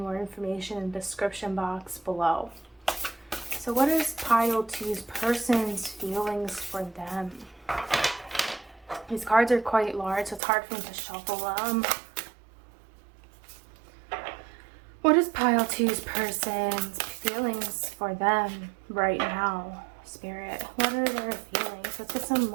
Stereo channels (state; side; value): drops out; left; at 10.4 s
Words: more information in the description box below. So what is pile 2's person's feelings for them? These cards are quite large, so it's hard for me to shuffle them. What is pile 2's person's feelings for them right now, Spirit? What are their feelings? Let's get some